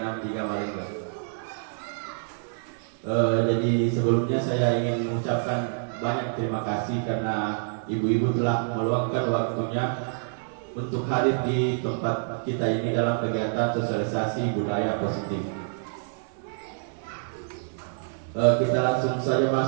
Maringgang. Jadi sebelumnya saya ingin mengucapkan banyak terima kasih karena ibu-ibu telah meluangkan waktunya untuk hadir di tempat kita ini dalam kegiatan sosialisasi budaya positif. Kita langsung saja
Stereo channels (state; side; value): silent; left; 60 dB below the other